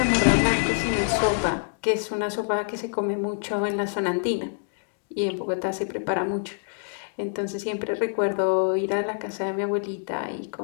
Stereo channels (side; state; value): right; silent; digital silence